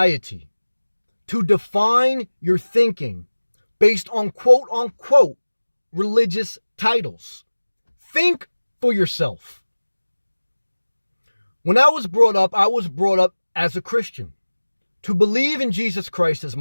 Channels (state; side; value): inverted; both; correlation -1.00